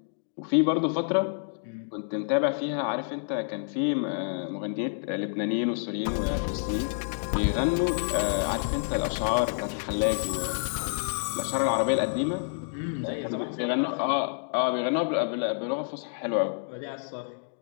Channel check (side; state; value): right; silent; digital silence